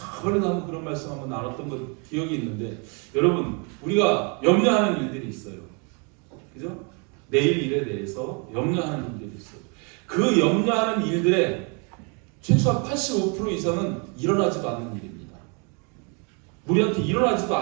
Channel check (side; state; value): left; quieter; 34.8 dB